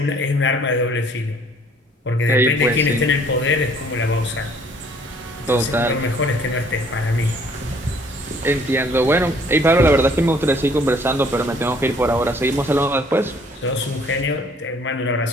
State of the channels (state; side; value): normal; both; correlation 0.59